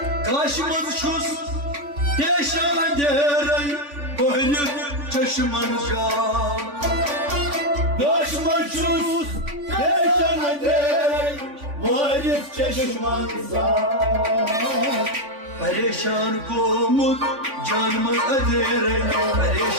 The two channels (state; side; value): late; left; 3.5 ms